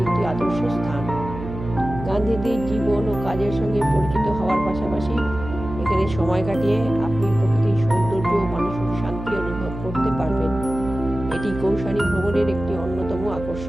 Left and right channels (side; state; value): right; noise; hum, 9 dB below the sound